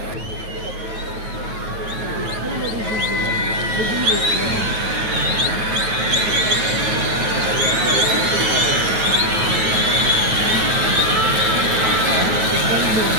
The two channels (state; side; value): late; left; 9.3 ms